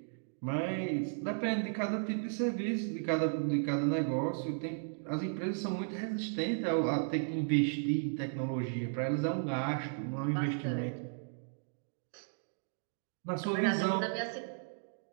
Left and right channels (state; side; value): silent; left; digital silence